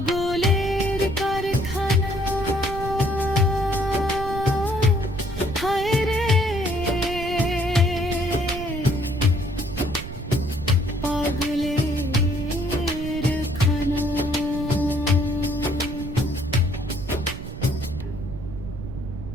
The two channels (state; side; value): noise; right; rumble, 9 dB below the sound